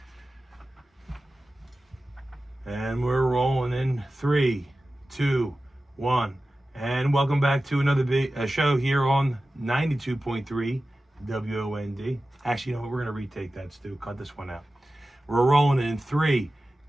And we're rolling in 3, 2, 1. And welcome back to another show here on 92.3 WOND. Actually, you know what? We're going to retake that, Stu. Cut this one out. We're rolling in 3,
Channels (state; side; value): normal; both; correlation 0.95